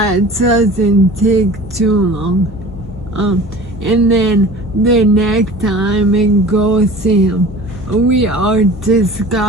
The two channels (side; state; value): both; normal; correlation 0.41